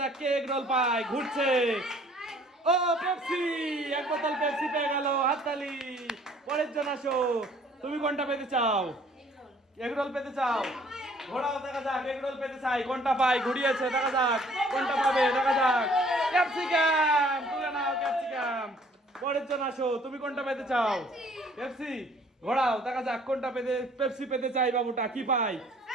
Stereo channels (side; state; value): both; normal; correlation 0.57